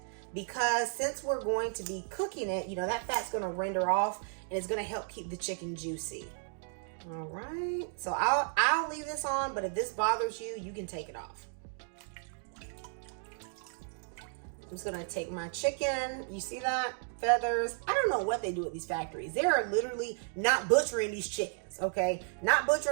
because since we're going to be cooking it, you know, that fat's going to render off and it's going to help keep the chicken juicy. All right. So I'll leave this on, but if this bothers you, you can take it off. I'm just gonna take my chicken. You see that? Feathers. I don't know what they do at these factories. They are literally not butchering these chickens, okay? Not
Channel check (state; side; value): silent; left; 55 dB below the other